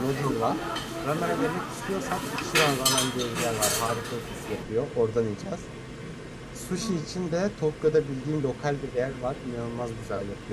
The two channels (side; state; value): both; identical; correlation 1.00